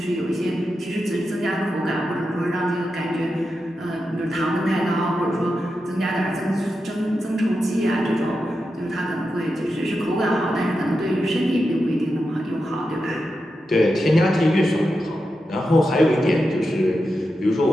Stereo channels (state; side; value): normal; both; correlation 0.89